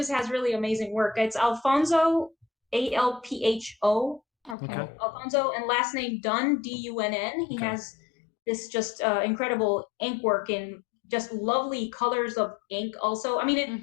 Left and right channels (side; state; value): right; drops out; at 4.5 s